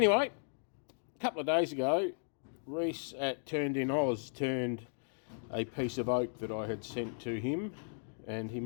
a couple of days ago, Rhys at Turned in Oz turned a piece of oak that I had sent to him, and he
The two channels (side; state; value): right; silent; digital silence